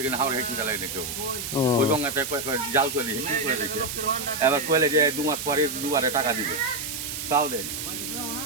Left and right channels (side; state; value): right; noise; hiss, 5 dB below the sound